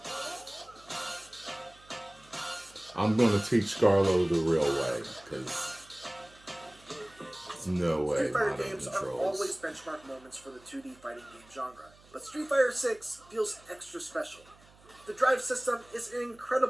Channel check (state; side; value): noise; right; hum, 26 dB below the sound